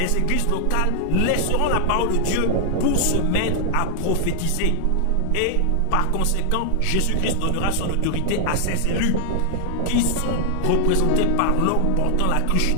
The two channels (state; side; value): different; both; correlation 0.00